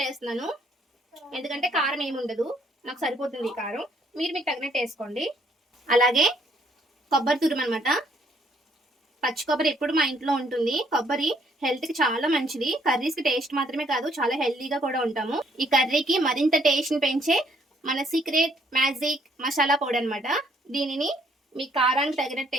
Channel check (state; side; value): normal; both; correlation 0.67